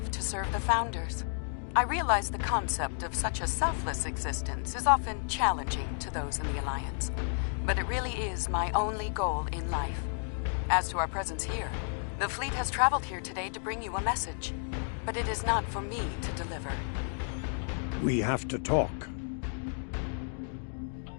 to serve the Founders. I realize the concept of such a selfless existence is often challenging to those in the Alliance, but it really is my only goal in life. As to our presence here, the fleet has traveled here today to bring you a message, but it is not for me to deliver. We have to talk.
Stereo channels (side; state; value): right; silent; 57 dB below the other